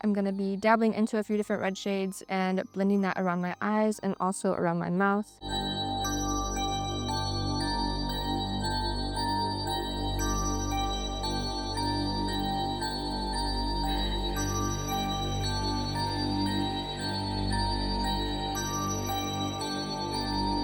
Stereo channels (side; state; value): both; identical; correlation 1.00